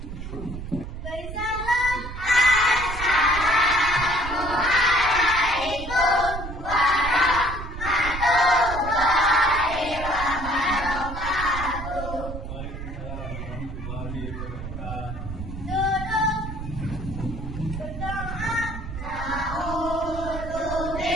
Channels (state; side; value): noise; right; rumble, 8 dB below the sound